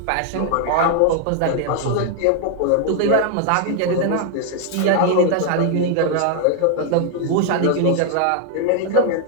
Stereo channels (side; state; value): both; different; correlation 0.00